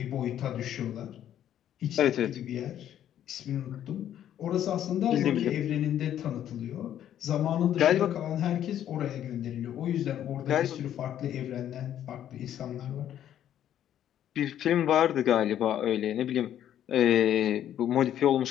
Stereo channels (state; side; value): quieter; right; 10.9 dB